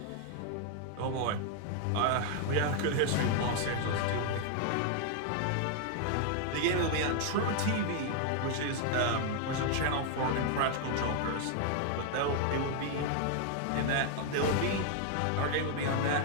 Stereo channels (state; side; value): different; both; correlation 0.00